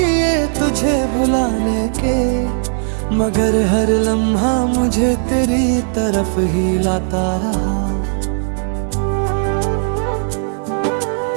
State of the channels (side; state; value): left; silent; 66 dB below the other